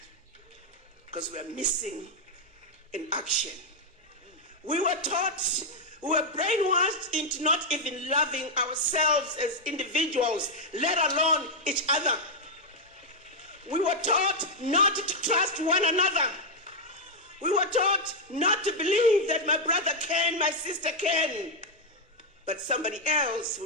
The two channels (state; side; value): normal; both; correlation -0.02